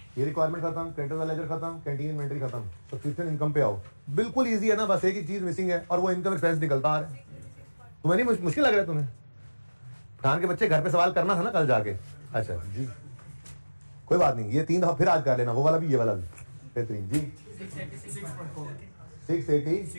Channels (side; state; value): both; inverted; correlation -1.00